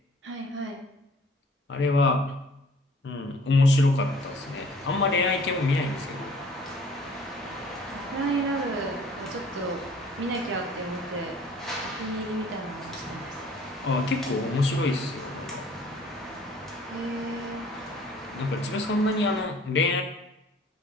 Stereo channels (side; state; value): both; normal; correlation 0.53